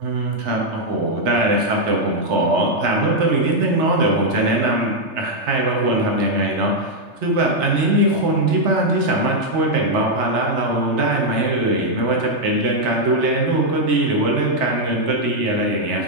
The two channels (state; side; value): late; left; 3.3 ms